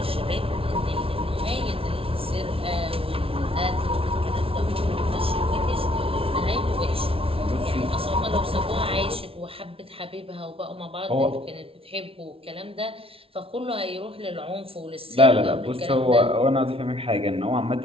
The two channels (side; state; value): left; late; 0.26 ms